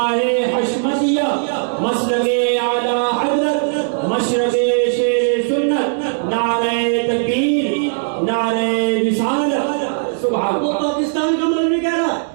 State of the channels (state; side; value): silent; left; digital silence